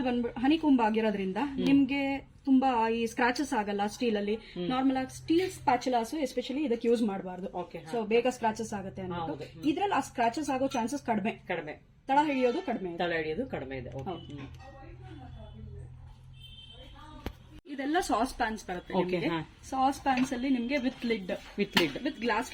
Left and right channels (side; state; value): both; identical; correlation 1.00